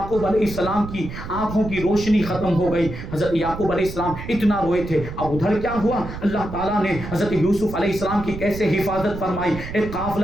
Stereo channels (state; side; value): noise; right; rumble, 10 dB below the sound